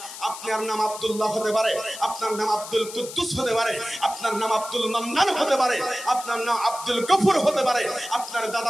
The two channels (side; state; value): left; noise; hiss, 12 dB below the sound